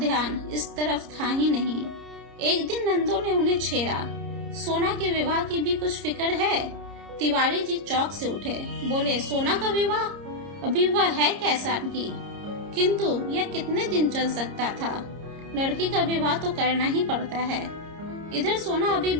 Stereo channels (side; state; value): left; late; 30 ms